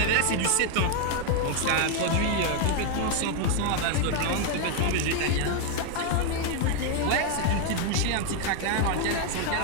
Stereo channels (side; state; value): both; different; correlation 0.01